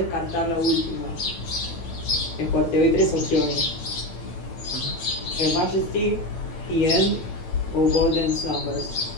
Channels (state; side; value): late; right; 9.0 ms